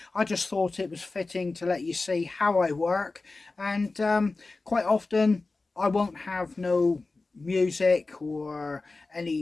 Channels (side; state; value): right; quieter; 3.6 dB